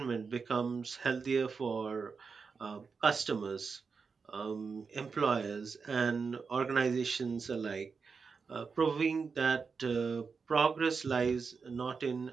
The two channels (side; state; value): left; quieter; 5.2 dB